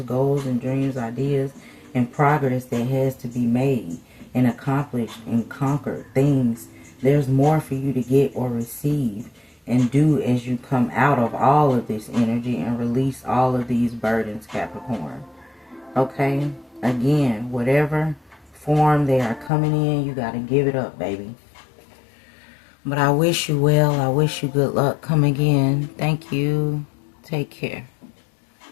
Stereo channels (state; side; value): drops out; right; at 19.5 s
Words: goals and dreams, ideas, and progress that has to be made and accomplished and conquered things. There's more for you to get or receive and do as you come out of all of this energy and release all of these burdens, Capricorn. Okay? Again, whatever form they are coming in, you got to give it up, baby. But I wish you well. I wish you good luck. Come again. Thank you. Take care.